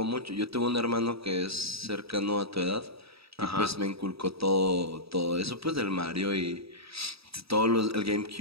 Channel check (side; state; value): left; late; 0.77 ms